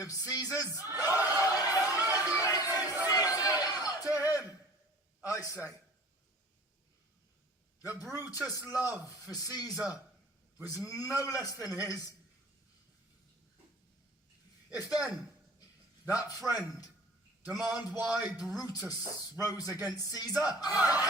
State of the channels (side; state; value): both; normal; correlation 0.45